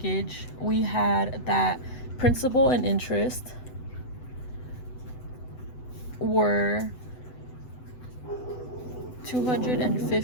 we had that principal and interest were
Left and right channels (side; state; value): right; late; 8.0 ms